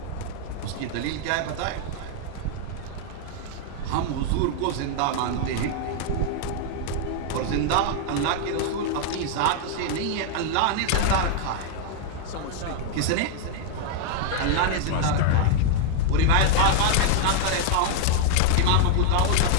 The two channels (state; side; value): different; both; correlation 0.00